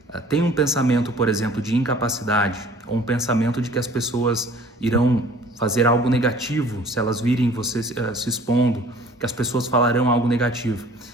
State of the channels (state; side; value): normal; both; correlation 0.50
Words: tem um pensamento, por exemplo, de incapacidade, ou um pensamento de que as pessoas irão fazer algo negativo se elas virem você se expondo, que as pessoas falarão algo negativo,